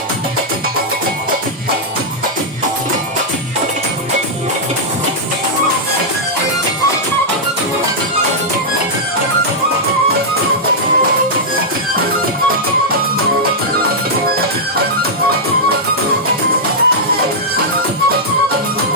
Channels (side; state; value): both; normal; correlation -0.08